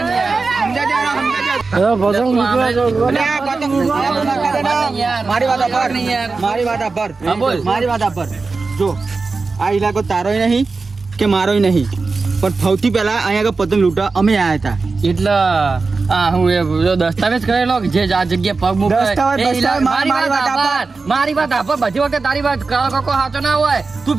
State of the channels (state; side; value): quieter; left; 4.1 dB